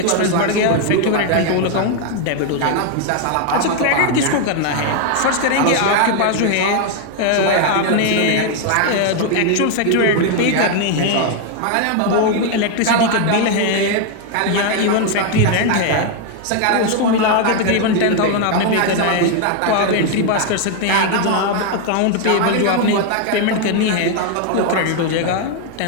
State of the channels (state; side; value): different; both; correlation 0.00